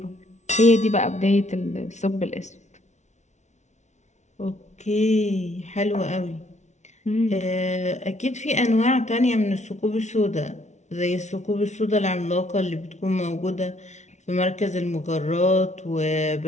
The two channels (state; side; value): late; right; 0.33 ms